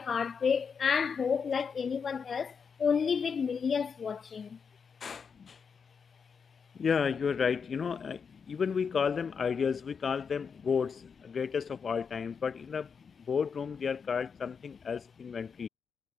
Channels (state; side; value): quieter; right; 6.1 dB